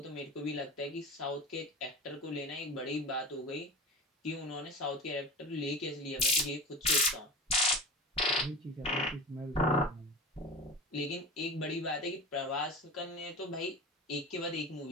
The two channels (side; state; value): both; normal; correlation 0.31